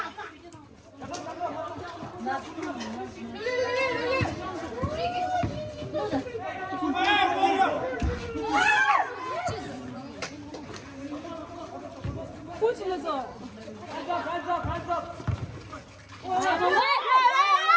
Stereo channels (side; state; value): both; identical; correlation 1.00